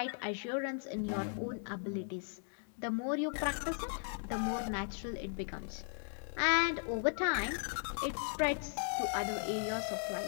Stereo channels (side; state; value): right; silent; 53 dB below the other